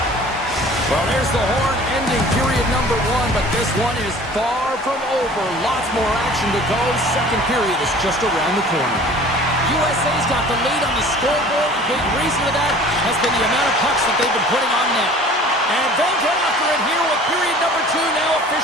Well, there's the horn ending period number one, but this one is far from over. Lots more action to go. Second period is just around the corner. USA's got the lead on the scoreboard. A big reason for that has been the amount of pucks that they've been putting on net. And they'll get after it here with period number two now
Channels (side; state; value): both; normal; correlation 0.47